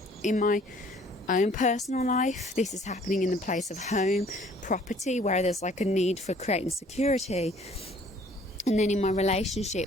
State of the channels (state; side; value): normal; both; correlation 0.56